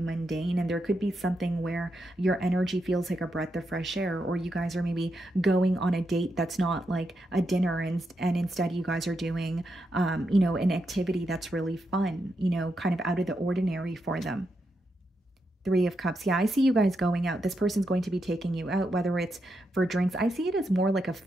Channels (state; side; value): normal; both; correlation 0.84